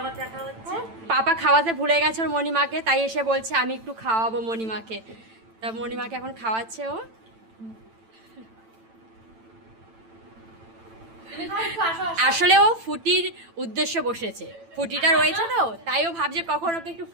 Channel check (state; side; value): late; left; 9.0 ms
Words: দেখা হচ্ছে। পাপা খাওয়াতে ভুলে গেছে ওর মণিমাকে, তাই এসে বলছে আমি একটু খাওয়াবো মণিমাকে। তা মণিমাকে এখন খাওয়াচ্ছে ও। আসলে ও ফুটির উদ্দেশ্যে বসেছে, ফুটিটা রয়েছে তো, তাই ও ভাবছে কখন ওকে একটু